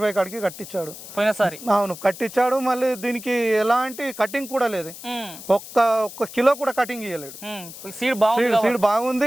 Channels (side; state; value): left; noise; hiss, 14 dB below the sound